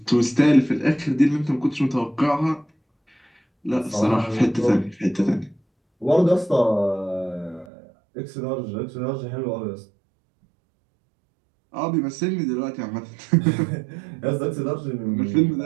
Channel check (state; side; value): drops out; left; at 7.7 s